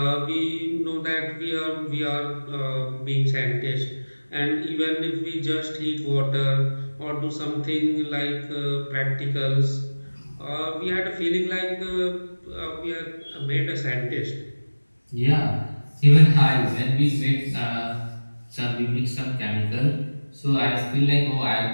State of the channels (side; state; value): both; inverted; correlation -1.00